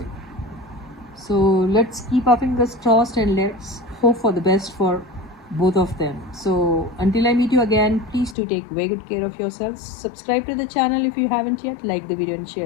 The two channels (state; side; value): drops out; right; at 8.3 s